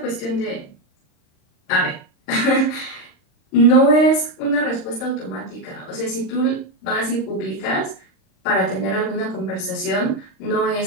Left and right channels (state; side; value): late; right; 39 ms